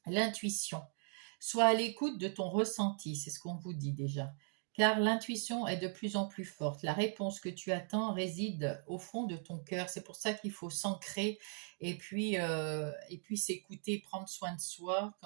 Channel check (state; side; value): silent; left; 52 dB below the other